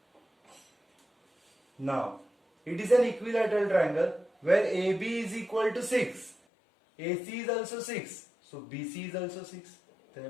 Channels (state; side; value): drops out; right; at 6.4 s